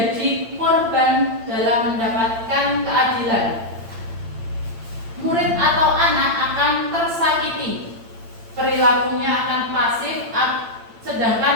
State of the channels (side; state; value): left; late; 8.8 ms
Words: korban dalam mendapatkan keadilan. Murid atau anak akan tersakiti. Perilakunya akan pasif,